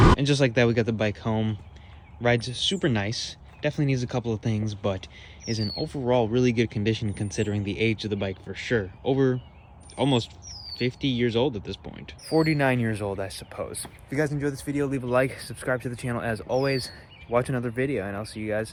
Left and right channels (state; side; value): identical; both; correlation 1.00